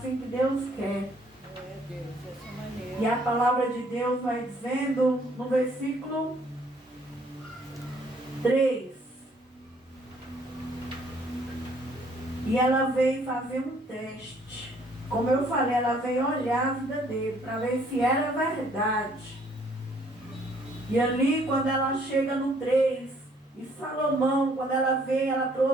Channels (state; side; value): normal; both; correlation 0.63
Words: que Deus quer. E a palavra de Deus vai dizendo no versículo 3. E ela veio fazer um teste. Como eu falei, ela veio olhar a vida dele para ver se era verdade. E ali, quando ela chega no 3, e Salomão, quando ela veio, ela